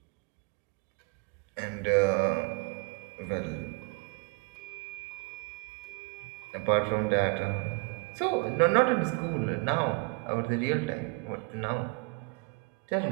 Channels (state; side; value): quieter; left; 29.7 dB